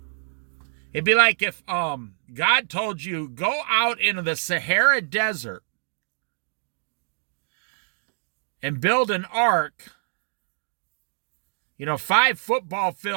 It'd be like if God told you, go out into the Sahara Desert and build an ark, 5 football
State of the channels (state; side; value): silent; left; digital silence